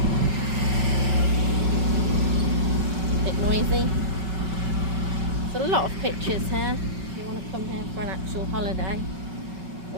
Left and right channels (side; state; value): left; late; 5.3 ms